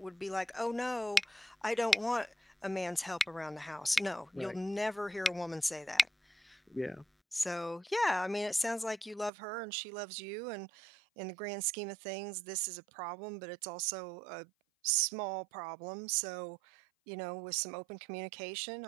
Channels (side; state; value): left; drops out; at 9.3 s